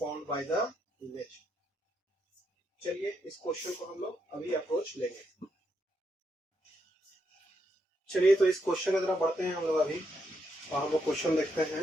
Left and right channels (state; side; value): normal; both; correlation 0.80